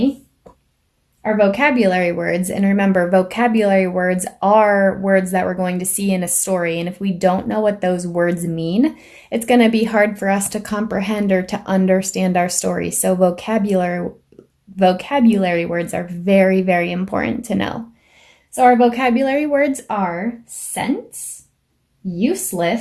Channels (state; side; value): identical; both; correlation 1.00